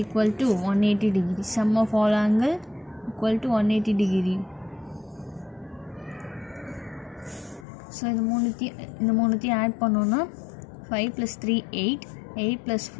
equal to 180 degree. Sum of all angle equal to 180 degree. So இந்த மூணுத்தையும் add பண்ணோன்னா 5 + 3 8 8 +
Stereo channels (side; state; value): right; drops out; at 7.7 s